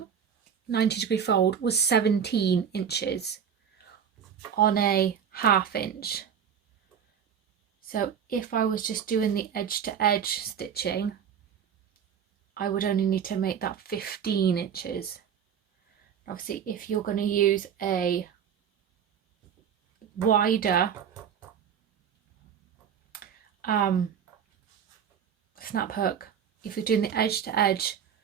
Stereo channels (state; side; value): quieter; left; 8.0 dB